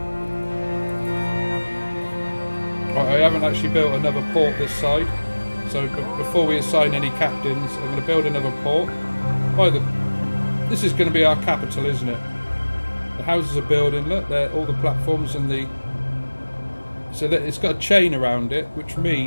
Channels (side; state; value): both; inverted; correlation -1.00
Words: I haven't actually built another port this side, so before we assign any captains, I'm going to build another port. This is going to be our capital, isn't it? The houses are building. Look, all the platforms and the. So that it's got a chain around it, which